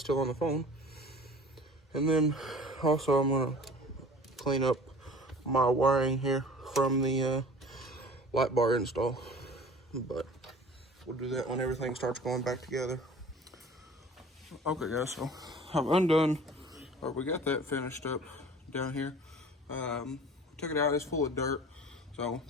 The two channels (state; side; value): normal; both; correlation 0.44